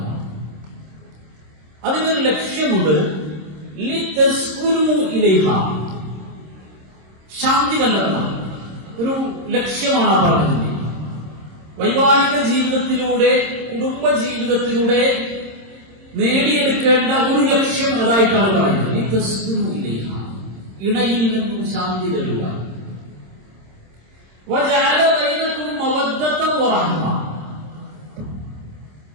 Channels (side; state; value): left; late; 26 ms